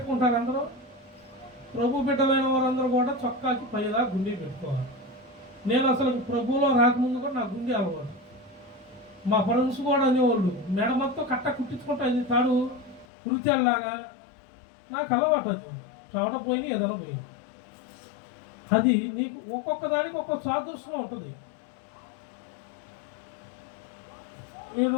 అందరూ. ప్రభు బిడ్డలైన వారందరూ కూడా చొక్కాకి పైదా గుండీ పెట్టుకోవాలి. నేను అసలు ప్రభువులో రాకముందు కూడా నా గుండీ అలవాటు. మా ఫ్రెండ్స్ కూడా అనేవాళ్ళు మెడ మొత్తం కట్ట కుట్టించుకుంటా తాడు కురితేలాగా. నాకు అలవాటు. అది చోట పోయి ఏదైనా పోయింది. అది నీకు ఒక్కొక్క దానికి ఒక్కొక్క సాదృశ్యం ఉంటుంది.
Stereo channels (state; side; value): drops out; right; at 13.1 s